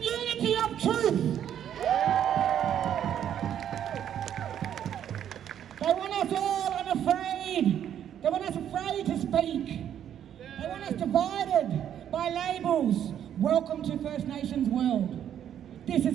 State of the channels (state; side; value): quieter; left; 9.9 dB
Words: unity of truth. They want us all unafraid. They want us afraid to speak. They want us divided by labels. Welcome to First Nations world. This is